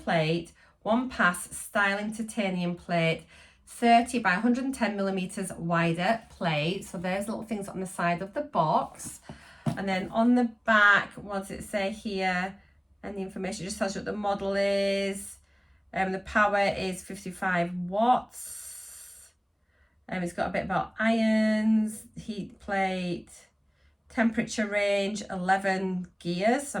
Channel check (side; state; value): both; identical; correlation 1.00